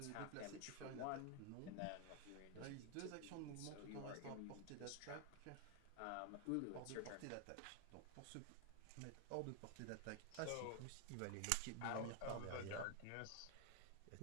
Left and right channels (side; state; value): both; different; correlation 0.00